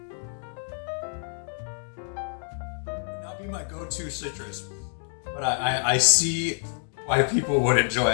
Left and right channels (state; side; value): silent; right; digital silence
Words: Not be my go-to citrus, but I see why people would enjoy